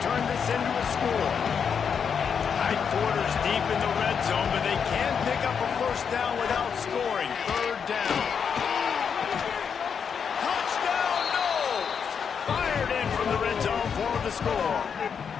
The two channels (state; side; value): quieter; right; 6.8 dB